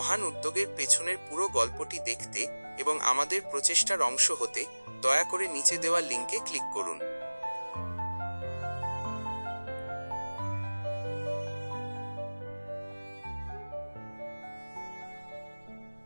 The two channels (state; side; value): inverted; both; correlation -1.00